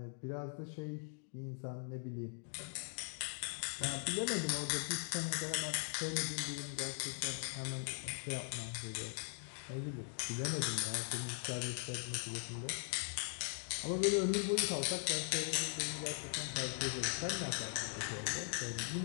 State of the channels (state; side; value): silent; right; digital silence